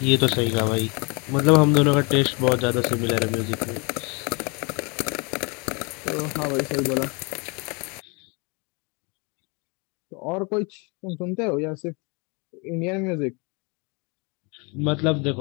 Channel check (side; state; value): right; quieter; 31.1 dB